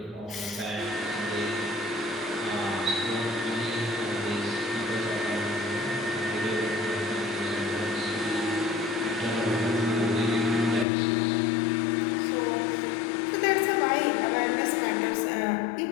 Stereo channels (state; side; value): drops out; right; at 10.9 s